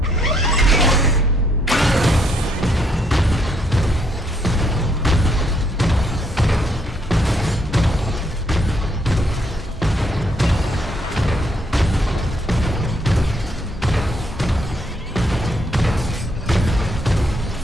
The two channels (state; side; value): normal; both; correlation 0.71